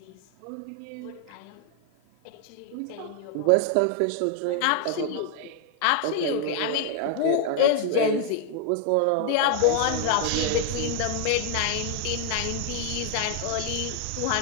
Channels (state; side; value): different; both; correlation 0.00